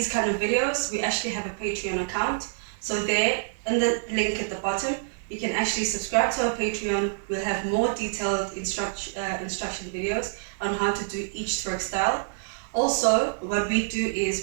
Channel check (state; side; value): silent; left; 60 dB below the other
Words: kind of videos, we actually have a Patreon account. So there, in the link at the bottom, you can actually subscribe to our Patreon. We'll have more detailed instruction videos on how to do each twerk style. Also, what we do is